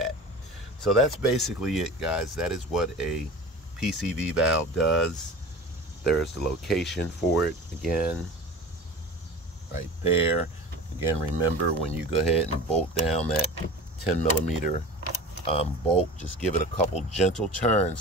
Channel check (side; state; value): both; normal; correlation 0.36